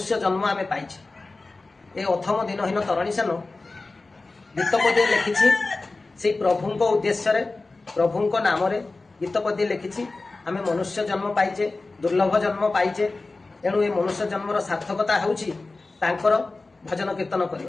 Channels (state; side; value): quieter; right; 3.5 dB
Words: जन्म आमे पाइछे। ये अथम दिनहीन तरणी सेन गीतपदी लिखी से प्रभुंक उद्देश्य प्रभुंक नाम गीतपदी लिखी। आम मनुष्य जन्म पाइचे, दुर्लभ जन्म पाइचे, एणु ये मनुष्य जन्मर सार्थकता होउछि तांकर भजन कीर्तन